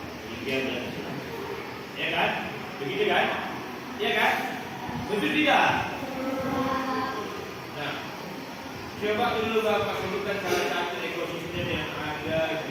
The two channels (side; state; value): both; identical; correlation 1.00